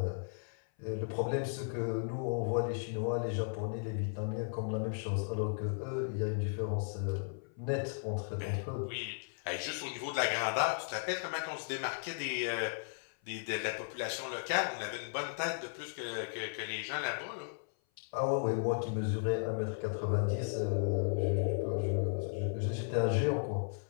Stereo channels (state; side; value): silent; right; 54 dB below the other